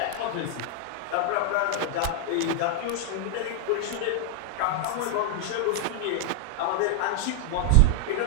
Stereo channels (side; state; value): both; different; correlation 0.00